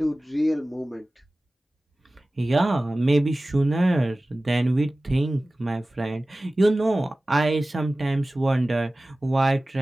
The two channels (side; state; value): both; normal; correlation 0.97